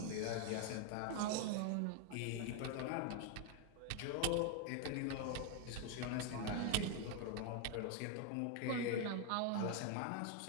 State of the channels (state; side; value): different; both; correlation 0.01